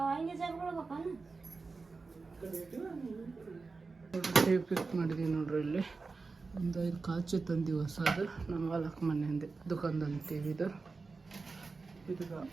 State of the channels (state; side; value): quieter; left; 4.2 dB